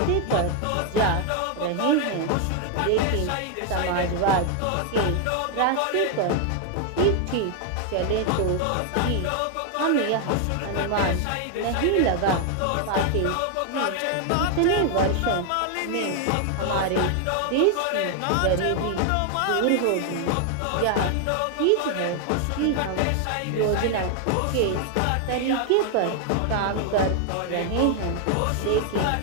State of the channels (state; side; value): different; both; correlation 0.00